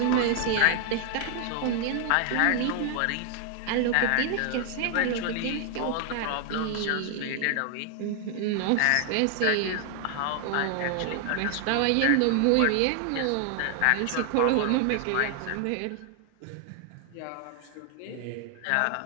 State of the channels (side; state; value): both; different; correlation 0.00